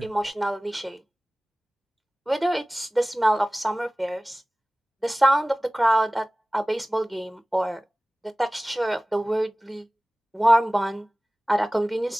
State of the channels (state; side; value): normal; both; correlation 0.98